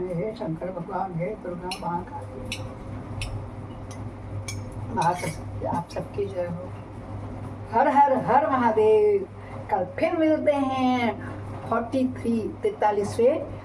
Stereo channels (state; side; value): identical; both; correlation 1.00